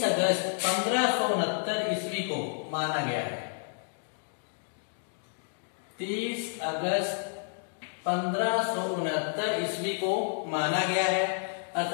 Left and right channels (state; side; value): silent; right; digital silence